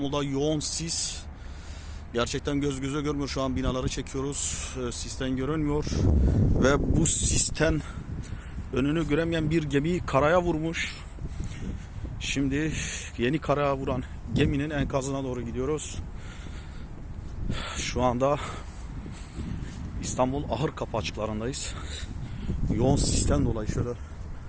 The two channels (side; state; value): both; identical; correlation 1.00